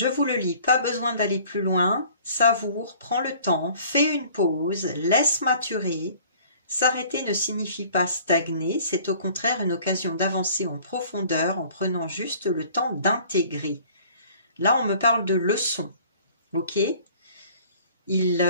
vous le lis. Pas besoin d'aller plus loin. Savoure, prends le temps, fais une pause, laisse maturer. S'arrêter ne signifie pas stagner. C'est au contraire une occasion d'avancer en profondeur en prenant juste le temps d'intégrer. Là, on me parle de leçon. Ok ? Il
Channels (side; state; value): both; inverted; correlation -0.51